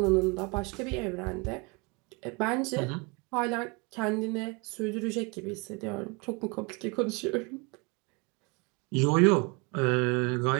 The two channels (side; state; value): left; quieter; 29.1 dB